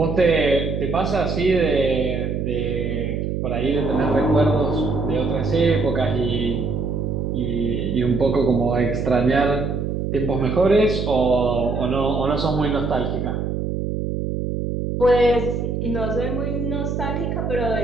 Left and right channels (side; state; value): right; noise; hum, 2 dB below the sound